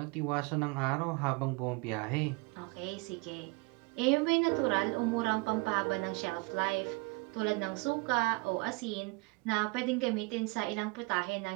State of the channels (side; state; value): left; quieter; 27.5 dB